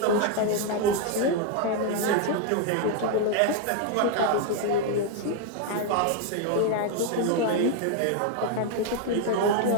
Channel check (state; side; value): different; both; correlation 0.01